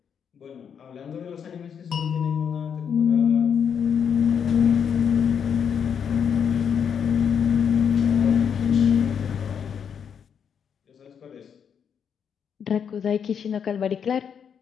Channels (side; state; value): right; quieter; 7.5 dB